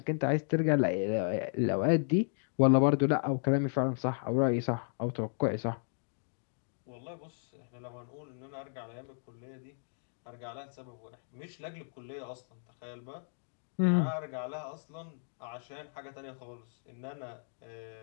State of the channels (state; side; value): silent; right; digital silence